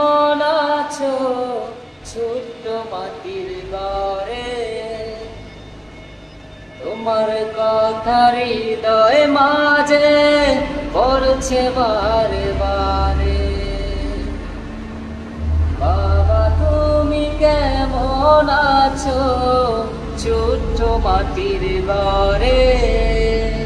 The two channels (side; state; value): both; identical; correlation 1.00